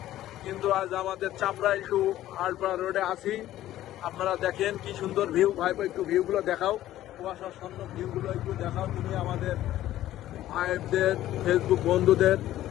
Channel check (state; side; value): quieter; right; 13.7 dB